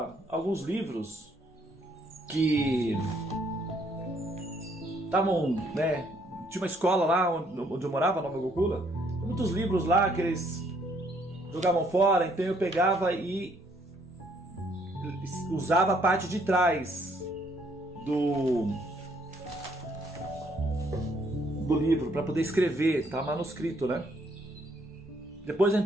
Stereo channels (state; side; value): normal; both; correlation 0.67